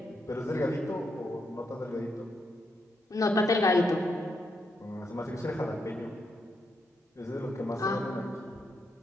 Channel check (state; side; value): normal; both; correlation 0.80